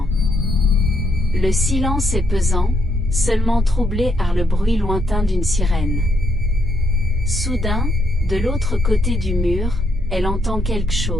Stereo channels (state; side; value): normal; both; correlation 0.75